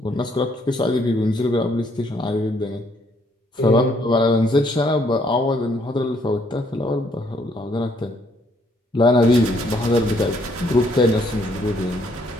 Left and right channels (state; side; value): normal; both; correlation 0.68